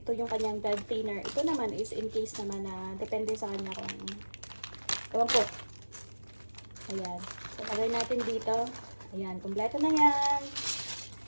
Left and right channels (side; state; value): both; inverted; correlation -1.00